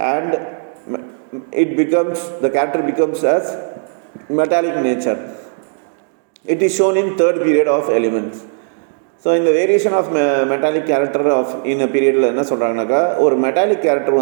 and the character becomes as metallic nature. It is shown in third period of elements. So இந்த variation of metallic character of in பீரியடில் என்ன சொல்கிறாங்கனாக்கா, ஒரு metallic character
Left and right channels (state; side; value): silent; left; digital silence